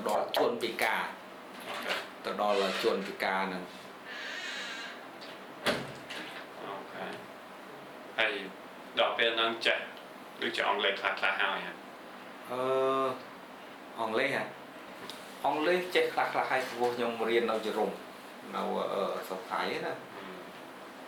đó chuồn bị cả từ đó là chuồn bị cả nè ok hay đọc về năng chạy được chọn lời khá hai hả on lê hả on lê chết khá hay vô nhung riêng đâu chỉ rùng nào ở sọc thái nè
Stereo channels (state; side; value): identical; both; correlation 1.00